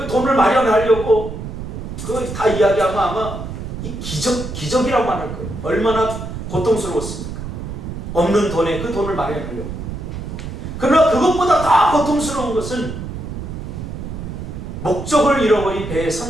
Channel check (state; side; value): noise; right; rumble, 8 dB below the sound